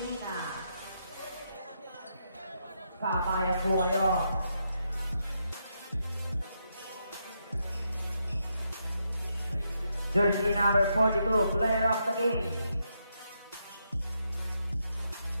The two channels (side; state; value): both; inverted; correlation -0.80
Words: Kabayan po kayo. Jersey number 42, player of the game.